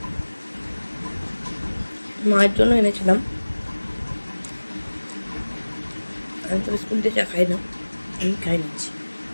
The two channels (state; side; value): inverted; both; correlation -1.00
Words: মায়ের জন্য এনেছিলাম, আমি তো বিস্কুট দিয়ে চা খাই না, আমি খাই নিচ্ছি।